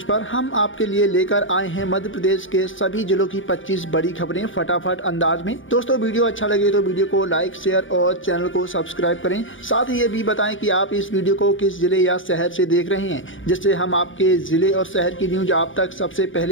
पर। हम आपके लिए लेकर आए हैं मध्य प्रदेश के सभी जिलों की 25 बड़ी खबरें फटाफट अंदाज में। दोस्तों, वीडियो अच्छा लगे तो वीडियो को लाइक, शेयर और चैनल को सब्सक्राइब करें। साथ ही ये भी बताएं कि आप इस वीडियो को किस जिले या शहर से देख रहे हैं, जिससे हम आपके जिले और शहर की न्यूज आप तक सबसे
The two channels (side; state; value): right; late; 0.57 ms